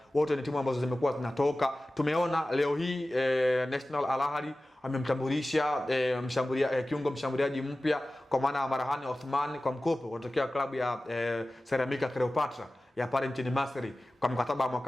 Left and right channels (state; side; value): normal; both; correlation 0.96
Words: wote ni timu ambazo zimekuwa zinatoka. Tumeona leo hii National Al Ahly amemtambulisha kiungo mshambuliaji mpya kwa maana ya Marhani Othman kwa mkopo kutokea klabu ya Ceramica Cleopatra ya pale nchini Misri kwa mkataba wa